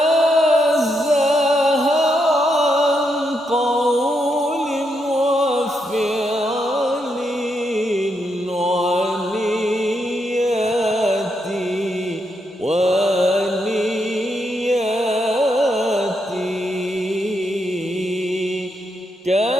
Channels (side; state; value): both; normal; correlation 0.80